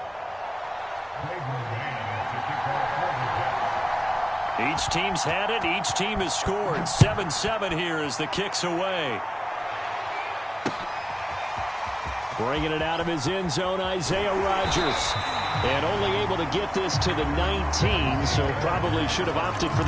Each team's had it. Each team has scored. 7-7 here as the kick's away. Bringing it out of his end zone, Isaiah Rodgers. And only able to get this to the 19, so probably should have opted for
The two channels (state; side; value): identical; both; correlation 1.00